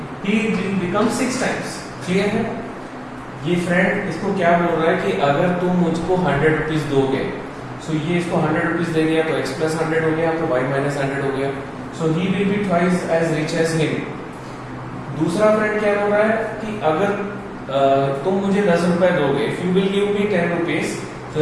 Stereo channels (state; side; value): identical; both; correlation 1.00